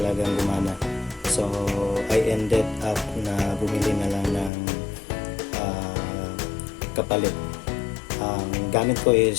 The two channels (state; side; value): drops out; right; at 4.5 s